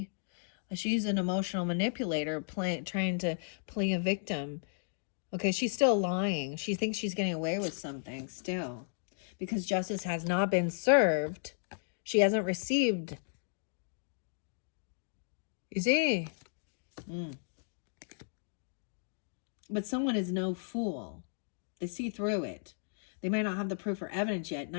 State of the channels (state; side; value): silent; right; digital silence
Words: She's an emotional manipulator trying to play a victim. Okay, she's still lying. She thinks she's getting away with something still. Because justice has not been served. She hasn't received. You see? But someone is no fool. They see through it. They might not have the proof or evidence yet.